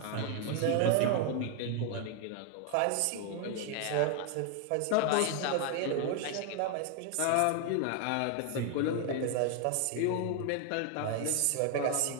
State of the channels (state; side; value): different; both; correlation 0.00